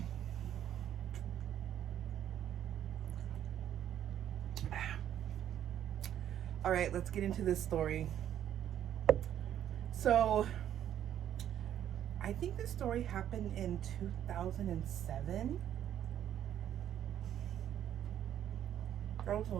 All right, let's get into this story. So I think this story happened in 2007. That was a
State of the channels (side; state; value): left; quieter; 10.6 dB